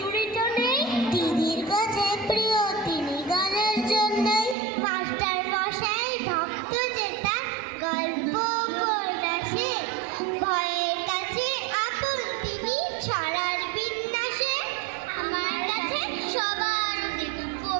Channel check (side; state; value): left; drops out; at 4.5 s